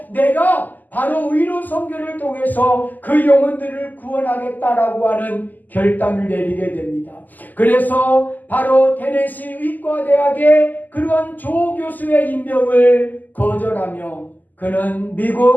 내가 바로 의로 선교를 통해서 그 영혼들을 구원하겠다라고 하는 결단을 내리게 됩니다. 그래서 바로 테네시 의과대학의 그러한 조교수의 임명을 거절하며 그는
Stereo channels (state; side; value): late; right; 0.084 ms